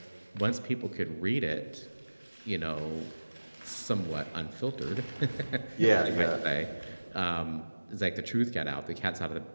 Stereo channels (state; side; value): inverted; both; correlation -1.00